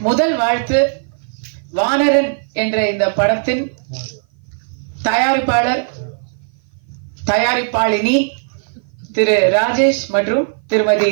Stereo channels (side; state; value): left; silent; 56 dB below the other